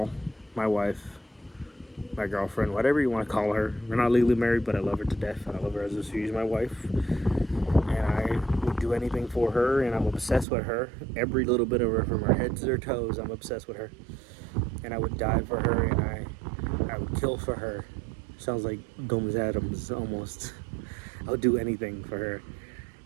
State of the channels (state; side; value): drops out; left; at 10.5 s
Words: my wife, my girlfriend, whatever you want to call her. We're not legally married, but I love her to death. I love her as if she's my wife, and I would do anything for her, and I'm obsessed with her. Every little bit of her, from her head to her toes, I'm obsessed with her, and I would die for her, and I would kill for her. Sounds like Gomez Adams almost. I'll do anything for her.